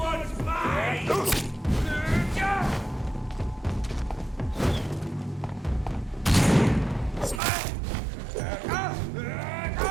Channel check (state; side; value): drops out; left; at 7.4 s